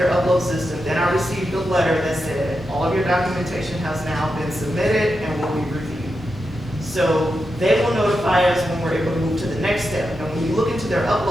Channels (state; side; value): noise; left; hum, 23 dB below the sound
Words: upload system. Then I received a letter that said, all of your documentation has now been submitted and will be reviewed. So they will notify us when we're able to move to the next step. And when you look into their